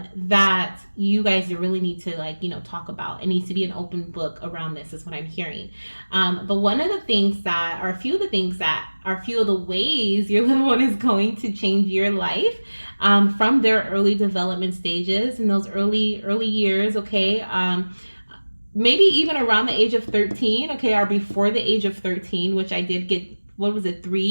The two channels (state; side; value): inverted; both; correlation -1.00